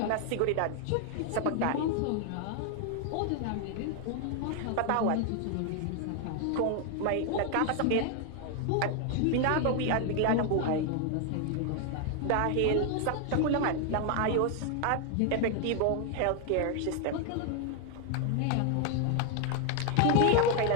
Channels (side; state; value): both; different; correlation 0.00